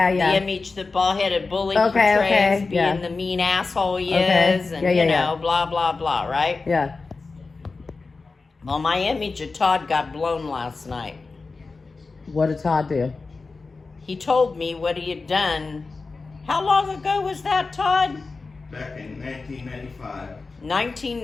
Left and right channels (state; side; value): quieter; right; 4.0 dB